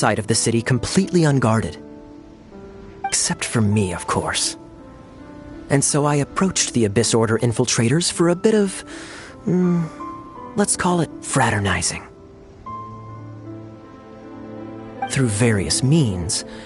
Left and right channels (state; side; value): identical; both; correlation 1.00